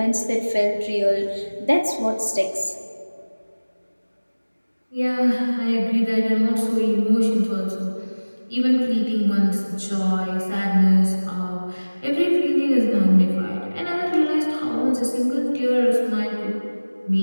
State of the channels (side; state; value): both; inverted; correlation -1.00